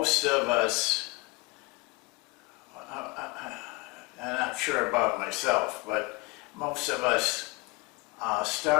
of us, I'm not sure about myself, but most of us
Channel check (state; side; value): quieter; right; 25.3 dB